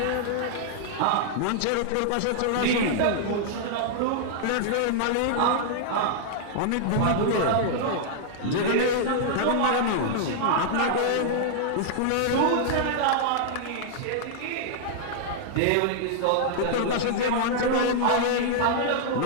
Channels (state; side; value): different; both; correlation -0.01